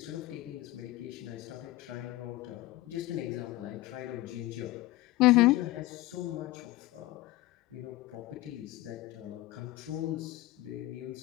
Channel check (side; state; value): right; quieter; 17.7 dB